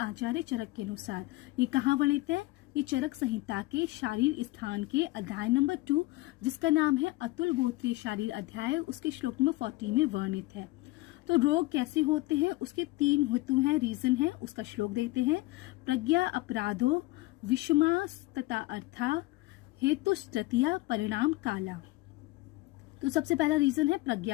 चरक के अनुसार। ये कहाँ वर्णित है? ये चरक संहिता के शारीर स्थान के अध्याय नंबर 2, जिसका नाम है अतुल गोत्रीय शारीर अध्याय, उसके श्लोक नंबर 40 में वर्णित है। तो रोग कैसे होते हैं, उसके 3 हेतु हैं, रीजन है। उसका श्लोक देखते हैं। प्रज्ञा अपराधो विषमास तथा अर्था हेतु तृतीया परिणाम काला। तो सबसे पहला रीजन है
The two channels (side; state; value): right; quieter; 20.3 dB